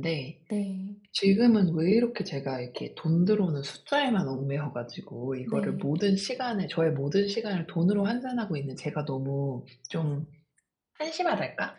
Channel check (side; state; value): both; identical; correlation 1.00